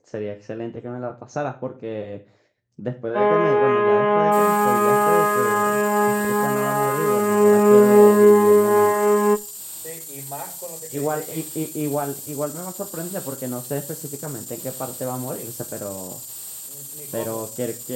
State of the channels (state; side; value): identical; both; correlation 1.00